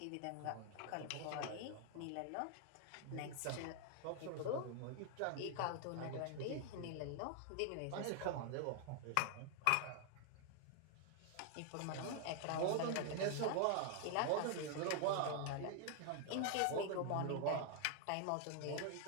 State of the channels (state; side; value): different; both; correlation 0.00